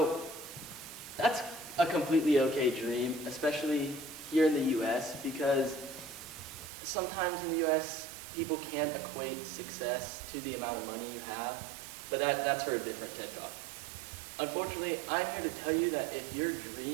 that's a completely okay dream, especially here in the US, because sometimes in the US, people can't equate success to the amount of money you have, but that's for a different TED Talk. Unfortunately, I'm here to tell you that if your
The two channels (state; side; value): drops out; left; at 6.7 s